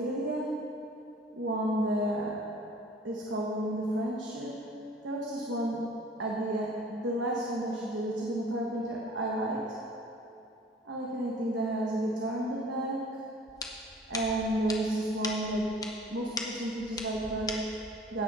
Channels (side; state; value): both; normal; correlation 0.50